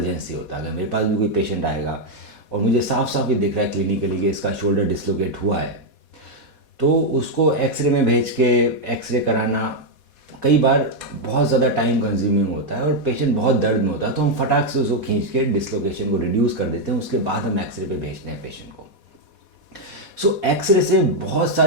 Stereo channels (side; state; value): right; late; 4.2 ms